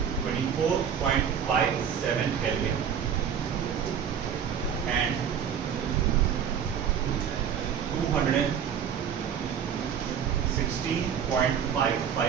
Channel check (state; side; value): quieter; left; 8.0 dB